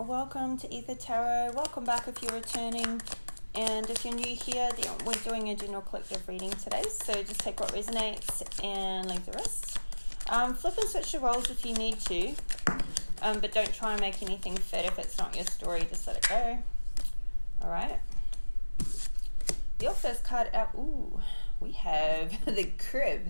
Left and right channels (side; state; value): both; inverted; correlation -1.00